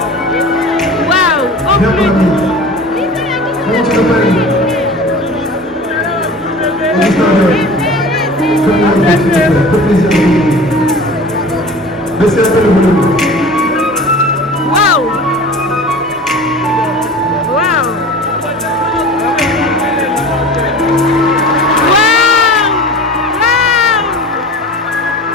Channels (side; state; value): both; normal; correlation 0.38